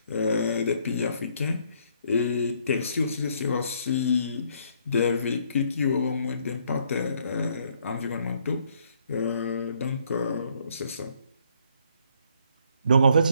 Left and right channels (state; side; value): inverted; both; correlation -0.68